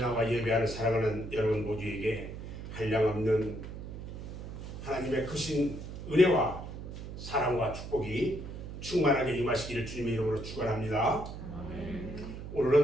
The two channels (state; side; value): noise; right; hum, 9 dB below the sound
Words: 예배하는 사랑하는 여러분 모두에게 한량없는 하나님의 크신 은혜와 사랑과 축복이 충만하게 임하시기를 주님의 이름으로 축원합니다.